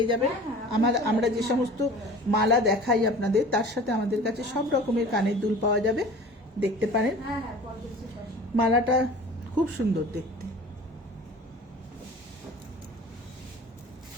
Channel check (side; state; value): both; normal; correlation 0.42